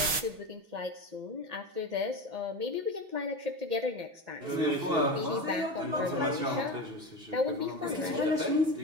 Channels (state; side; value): late; left; 6.0 ms